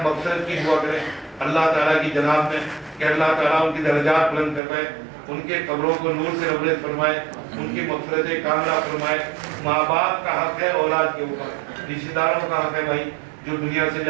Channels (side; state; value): left; drops out; at 4.6 s